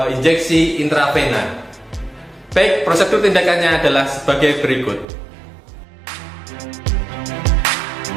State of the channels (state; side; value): drops out; left; at 5.1 s